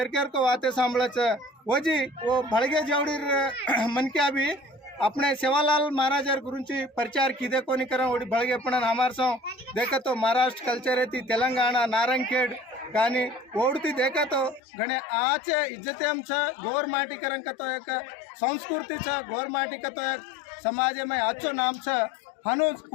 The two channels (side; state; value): right; drops out; at 14.6 s